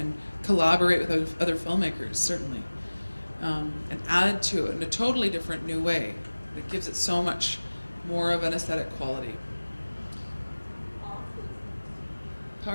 collaborate with other filmmakers, certainly, and add to it in a totally different new way that gives it so much more of an aesthetic quality.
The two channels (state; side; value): inverted; both; correlation -1.00